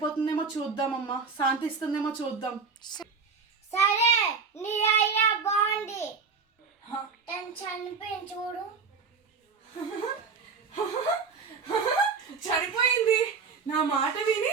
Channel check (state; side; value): quieter; left; 5.2 dB